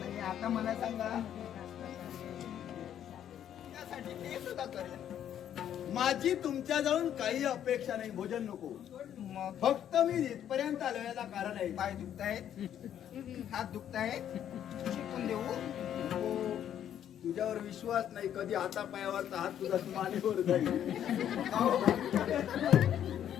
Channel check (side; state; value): right; quieter; 10.1 dB